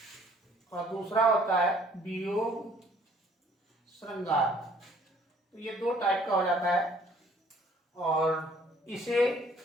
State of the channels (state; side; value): normal; both; correlation 0.58